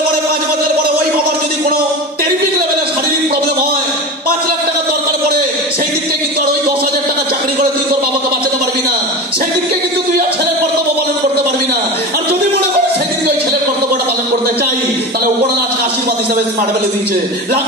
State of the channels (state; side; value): normal; both; correlation 0.27